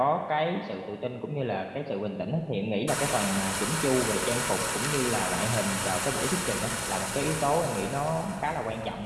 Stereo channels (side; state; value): both; identical; correlation 1.00